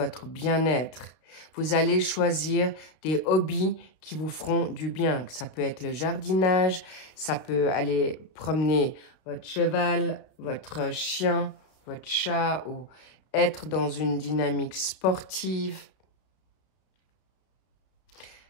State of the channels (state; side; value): late; right; 32 ms